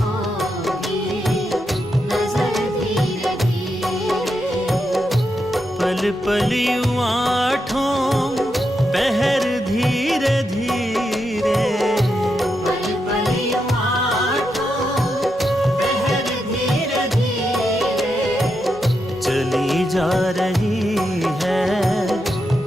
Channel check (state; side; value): normal; both; correlation 0.84